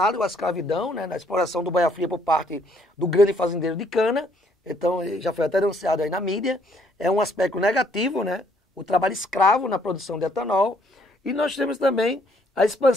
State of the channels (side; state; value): both; normal; correlation 0.66